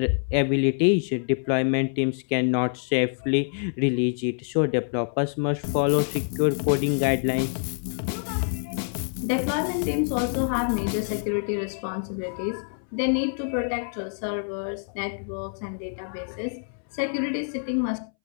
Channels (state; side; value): silent; right; 61 dB below the other